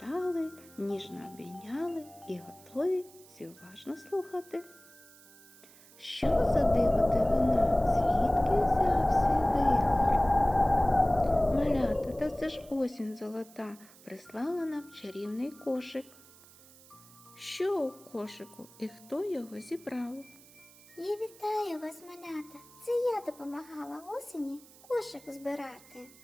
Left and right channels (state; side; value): noise; right; hiss, 23 dB below the sound